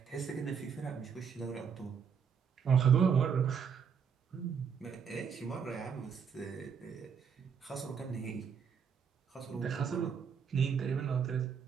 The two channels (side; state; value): left; quieter; 6.8 dB